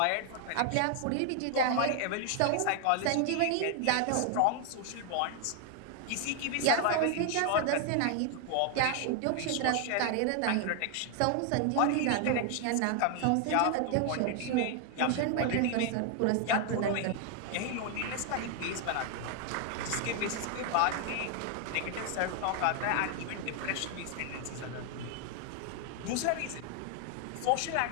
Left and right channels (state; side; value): different; both; correlation 0.00